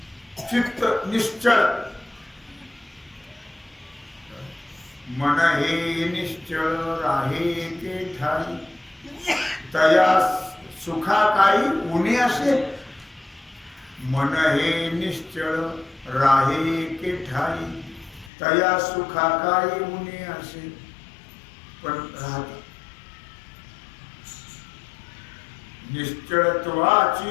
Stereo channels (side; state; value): right; drops out; at 18.3 s